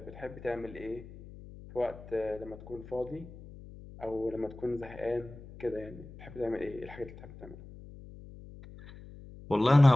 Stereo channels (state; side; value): noise; left; hum, 16 dB below the sound